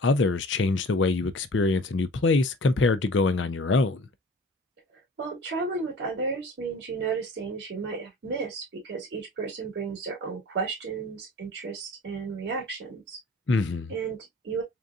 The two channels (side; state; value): both; normal; correlation 0.45